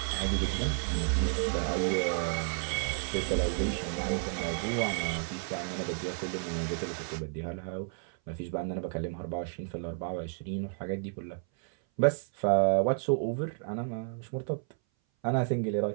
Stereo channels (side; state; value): left; silent; 57 dB below the other